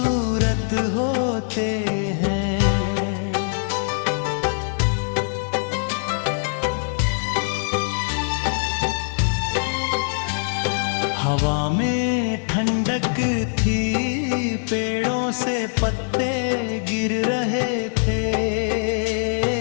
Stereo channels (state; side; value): silent; right; 58 dB below the other